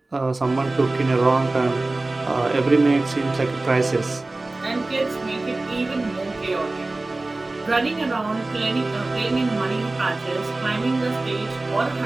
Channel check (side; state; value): left; quieter; 3.0 dB